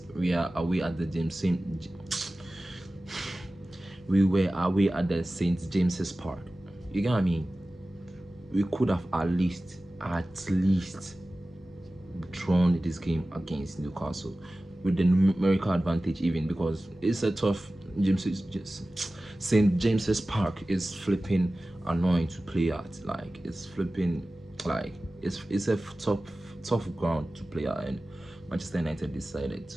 we are away at the we were away at the St. James's Park. You get what I mean? We could have at least drawn this game against Newcastle with the numerical advantage, even, because it's a tough St. James's Park is flipping annoying to play at. Like, it's flipping, like, it's a tough ground to play at, and Manchester United decided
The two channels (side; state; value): both; normal; correlation 0.96